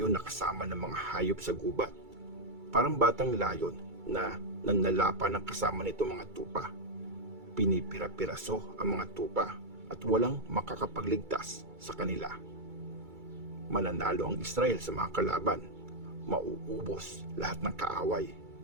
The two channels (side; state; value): left; late; 2.3 ms